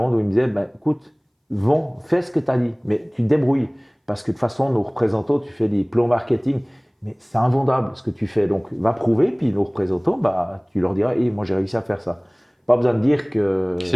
où il me disait, écoute, fais ce que tu as dit, mais tu te débrouilles. Parce que de toute façon, nos représentants, tu fais des plans marketing, mais c'est invendable ce que tu fais. Donc, va prouver, puis nos représentants, tu leur diras, moi j'ai réussi à faire ça. Pas besoin de dire que… C'est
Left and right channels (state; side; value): identical; both; correlation 1.00